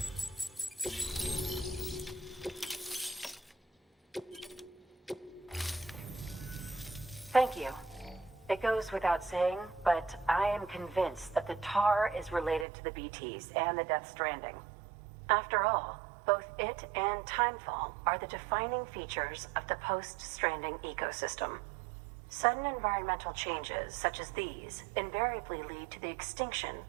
Thank you. It goes without saying, but I am convinced that the tar is related to the BTs and the Death Stranding. After all, both it and Timefall are the defining features of the post-Stranding ecosystem. Sudden environmental changes such as these invariably lead to the extinction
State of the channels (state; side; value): drops out; left; at 12.7 s